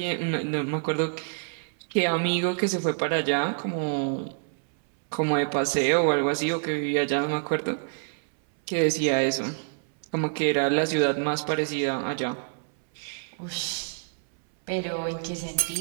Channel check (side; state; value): left; silent; 60 dB below the other